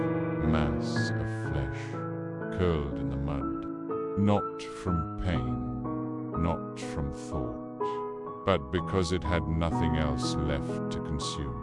mass of flesh, curled in the mud, not from pain, not from thought, but because it had nothing else left to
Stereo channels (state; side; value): identical; both; correlation 1.00